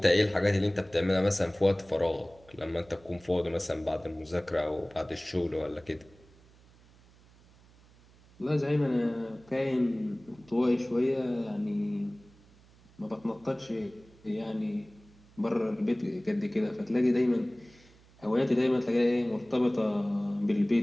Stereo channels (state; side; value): noise; right; hum, 27 dB below the sound